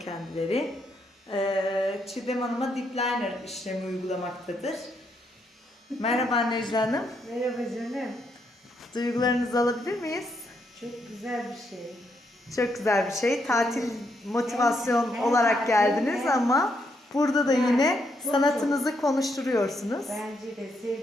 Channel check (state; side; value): normal; both; correlation 0.77